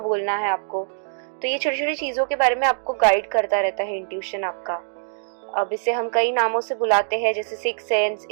है आपको। तो ये छोटी छोटी चीज़ों के बारे में आपको गाइड करता रहता है इंट्यूशन आपका। अब इसे हम कई नामों से बुलाते हैं, जैसे six sense,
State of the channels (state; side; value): silent; left; digital silence